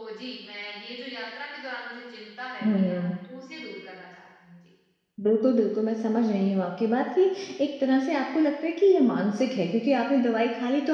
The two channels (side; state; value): both; identical; correlation 1.00